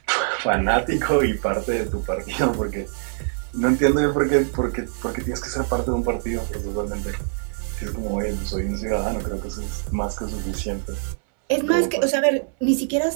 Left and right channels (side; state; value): left; silent; 60 dB below the other